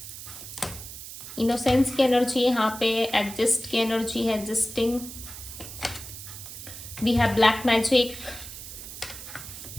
innocence की एनर्जी यहाँ पे, एडजस्ट की एनर्जी है, adjusting, we have black magic,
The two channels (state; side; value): noise; right; hiss, 12 dB below the sound